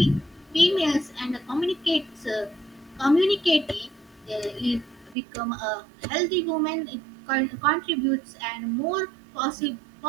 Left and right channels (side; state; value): left; drops out; at 5.2 s